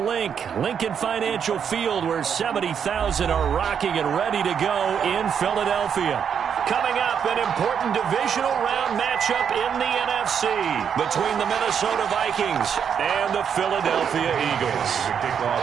Lincoln Financial Field, where 70,000 are rocking and ready to go in Philadelphia. Coming up, an important divisional round matchup in the NFC between the Minnesota Vikings and the Philadelphia Eagles. Kickoff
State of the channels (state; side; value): quieter; left; 7.6 dB